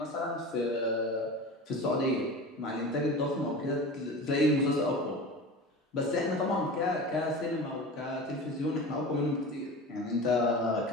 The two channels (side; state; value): both; normal; correlation 0.32